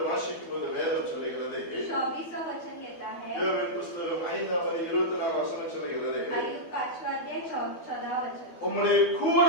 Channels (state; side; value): late; right; 12 ms